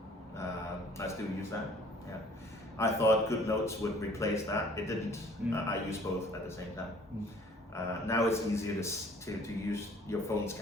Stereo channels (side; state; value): both; normal; correlation 0.55